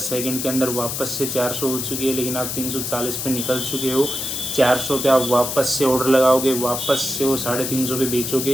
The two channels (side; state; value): left; noise; hiss, 3 dB below the sound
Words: सेकंड के अंदर वापस से 400 हो चुकी है, लेकिन आप 340 पे निकल चुके हो। 400 पे आप वापस से ऑर्डर लगाओगे, वापस से वो 350 पे